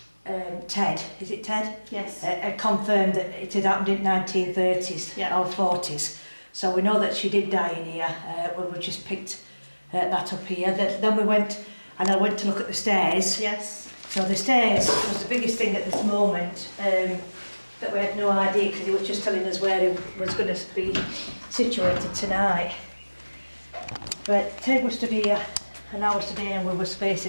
Ted, is it Ted? Yes. Had confirmed that it had happened in 1930s or 40s. So we know that she did die in here. We just picked that up here. Then we went, and I went to look at the stairs. Yes. So the stairs was the biggest thing at this moment, that we had no idea, because he was just telling us where it was going to be situated tonight. But Ted was stood here, and I was stood here, and we were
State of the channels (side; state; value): both; inverted; correlation -1.00